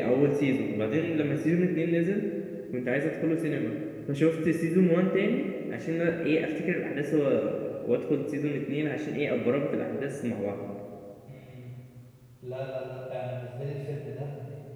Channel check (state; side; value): identical; both; correlation 1.00